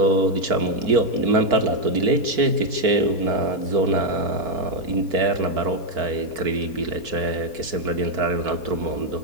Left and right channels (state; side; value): late; left; 4.6 ms